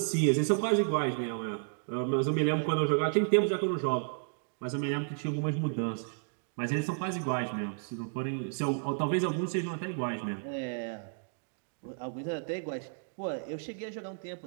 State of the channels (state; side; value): silent; left; digital silence